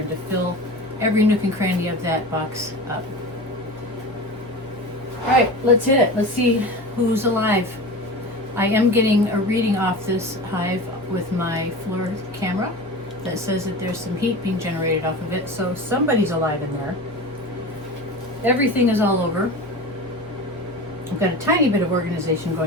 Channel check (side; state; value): both; normal; correlation 0.31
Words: to fill every nook and cranny of that box up. All right, let's hit it. Let's see who's alive. I am getting a reading off this hive with my floor camera that says that there's some heat being generated off of it, so somebody's alive in there. Everything is all over. I've got a tiny bit of organization